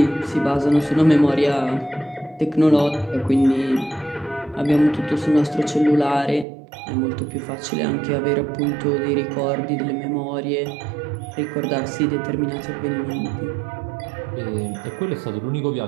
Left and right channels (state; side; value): drops out; left; at 6.5 s